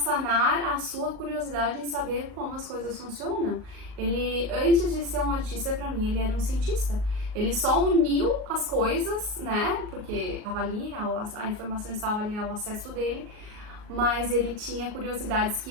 a sua curiosidade em saber como as coisas funcionam. Ele, antes de ser um artista, para mim, ele era um cientista. Ele só uniu as coisas, né, porque estava ali, a informação estava ali ao acesso dele, mas ele tinha curiosidades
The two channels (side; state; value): left; late; 38 ms